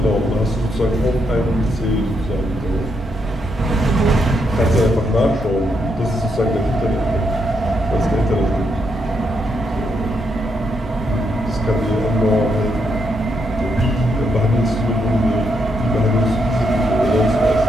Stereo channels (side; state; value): both; normal; correlation 0.79